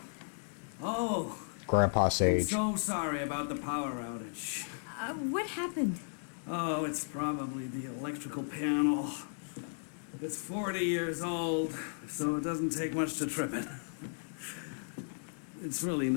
Oh, Grandpa Sage. so sorry about the power outage. What happened? Oh, it's probably the electrical panel. It's 40 years old, so it doesn't take much to trip it. It's really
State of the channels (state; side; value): silent; right; digital silence